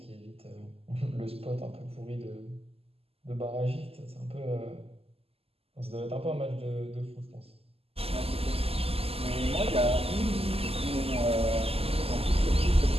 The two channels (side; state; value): left; late; 0.29 ms